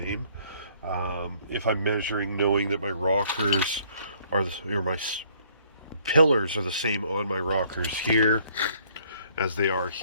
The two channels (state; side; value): inverted; both; correlation -0.62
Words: If I'm measuring knowing that my rockers are my pillars are the same on my rockers here as they are